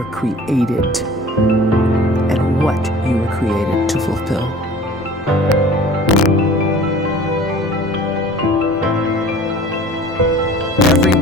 created and what you were created to fulfill.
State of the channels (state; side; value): normal; both; correlation 0.46